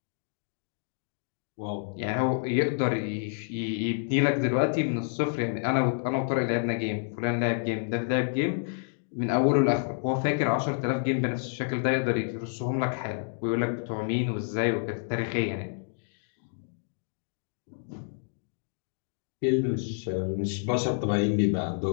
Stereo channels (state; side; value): silent; right; digital silence